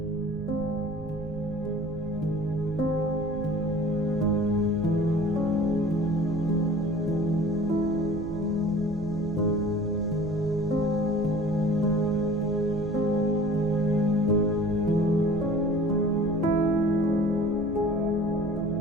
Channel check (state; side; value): noise; right; rumble, 13 dB below the sound